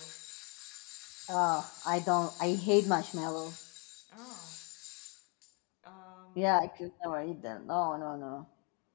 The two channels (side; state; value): right; quieter; 34.3 dB